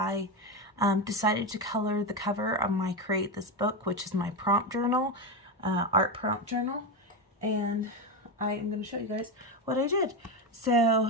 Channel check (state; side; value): normal; both; correlation 0.13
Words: decided to color the cover of my Create This Book, which is my prompt journal, art prompt journal. And I am going to show you guys what I did.